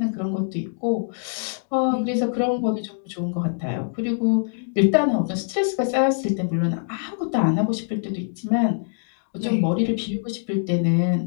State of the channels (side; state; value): right; silent; digital silence